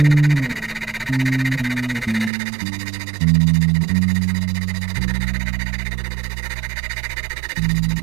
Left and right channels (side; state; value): left; drops out; at 2.3 s